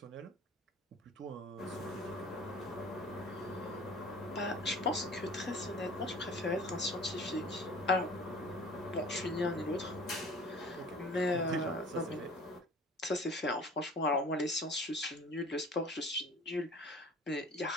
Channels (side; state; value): both; normal; correlation 0.45